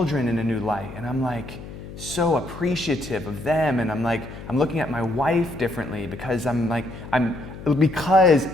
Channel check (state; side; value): noise; left; hum, 13 dB below the sound